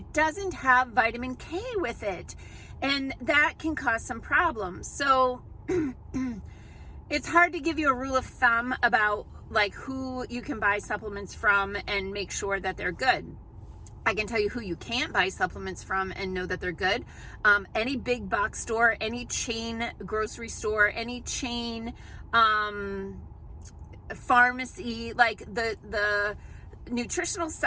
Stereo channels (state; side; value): identical; both; correlation 1.00